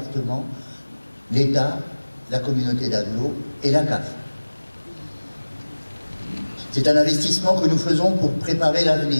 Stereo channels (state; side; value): inverted; both; correlation -1.00